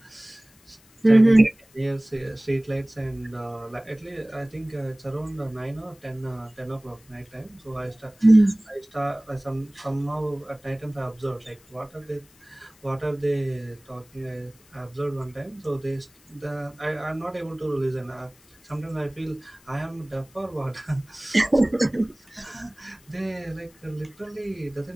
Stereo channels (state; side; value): noise; left; hiss, 28 dB below the sound